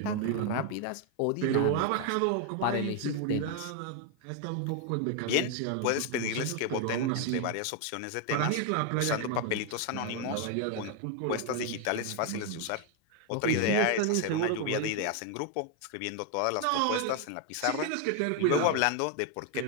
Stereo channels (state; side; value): different; both; correlation 0.01